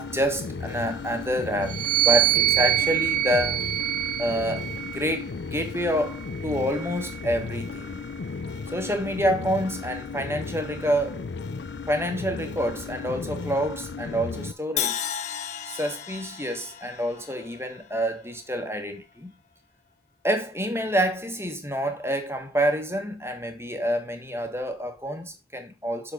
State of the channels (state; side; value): normal; both; correlation 0.56